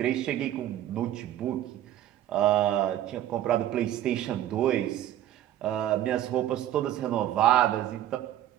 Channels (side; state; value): left; quieter; 12.3 dB